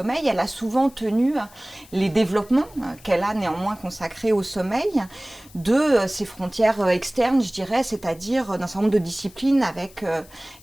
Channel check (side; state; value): left; noise; hiss, 24 dB below the sound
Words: elle a souvent tenu les développements qu'elle a néanmoins consacrés au sommeil de ses frontières externes, je dirais, c'est-à-dire d'un certain nombre de disciplines avec